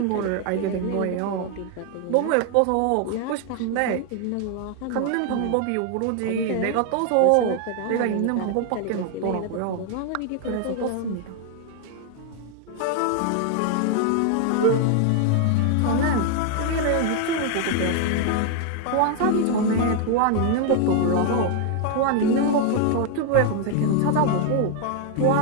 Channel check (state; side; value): different; both; correlation 0.00